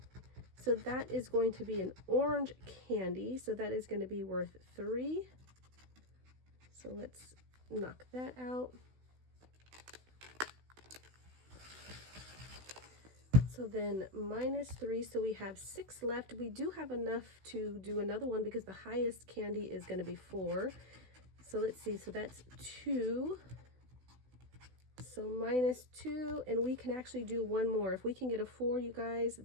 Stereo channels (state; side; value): late; left; 16 ms